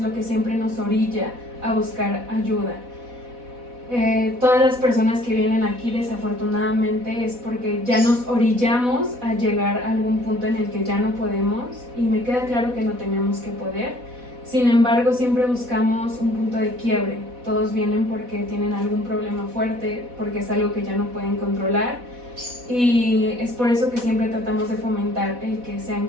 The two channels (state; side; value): late; left; 4.1 ms